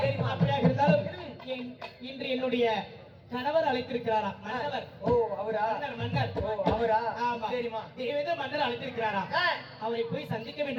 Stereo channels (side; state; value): both; identical; correlation 1.00